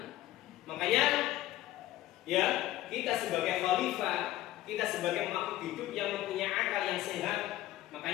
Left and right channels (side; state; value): right; quieter; 15.3 dB